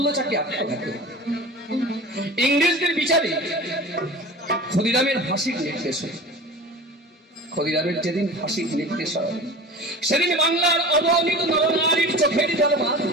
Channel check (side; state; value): both; normal; correlation 0.36